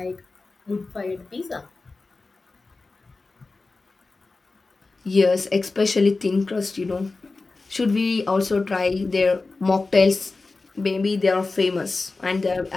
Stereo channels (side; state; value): right; quieter; 3.6 dB